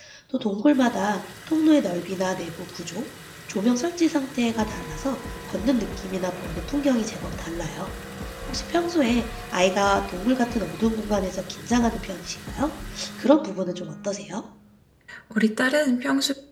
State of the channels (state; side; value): identical; both; correlation 1.00